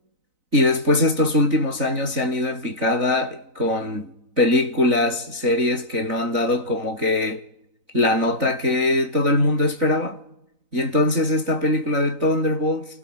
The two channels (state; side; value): late; left; 4.0 ms